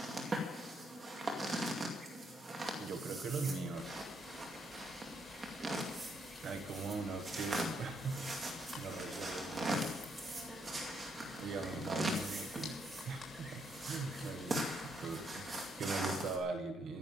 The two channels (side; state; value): both; normal; correlation 0.75